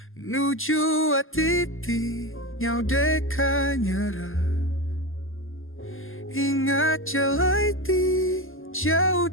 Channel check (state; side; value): late; right; 0.59 ms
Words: nuju hati ti nyau deka nyerah. Ingat jelai ti jauh